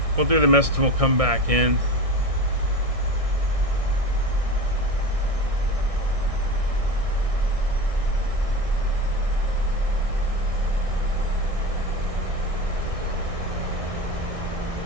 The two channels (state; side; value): late; left; 1.6 ms